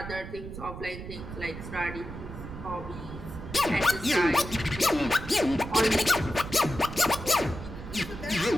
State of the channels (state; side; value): noise; right; rumble, 10 dB below the sound